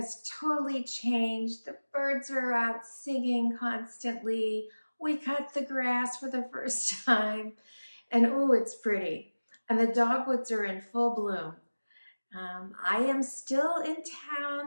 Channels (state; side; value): inverted; both; correlation -1.00